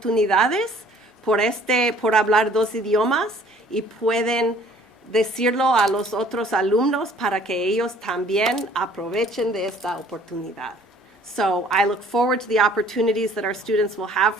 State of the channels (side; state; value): both; normal; correlation 0.56